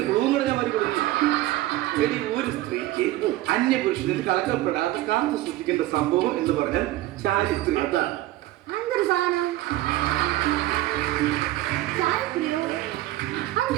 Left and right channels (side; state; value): left; quieter; 16.2 dB